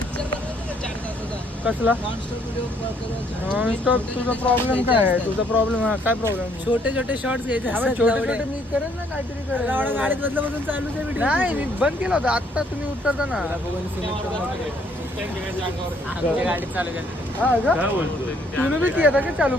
कसला नॉनस्टॉप. तुझा प्रॉब्लेम काय आहे? तुझा प्रॉब्लेम काय प्रॉब्लेम? छोटे छोटे शॉर्ट्स घ्यायचे असतात छोटे तेवढे. छोटे मी करेन ना काहीतरी करेन. एवढा गाडीत बदलापासून चालू आहे व्हिडिओ. नाही मी बंद केला होता आता तुम्ही उतरता ना. आमच्या गाडीत चालू केलं. हा का तुम्ही बी केला का चालू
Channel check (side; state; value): both; normal; correlation 0.66